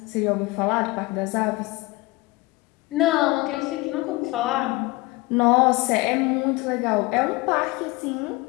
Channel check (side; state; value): right; quieter; 22.0 dB